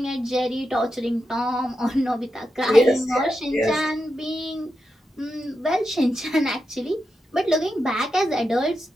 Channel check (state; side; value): normal; both; correlation 0.87